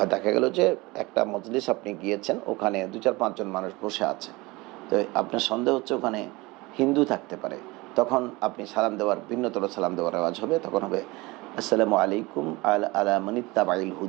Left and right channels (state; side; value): quieter; left; 22.7 dB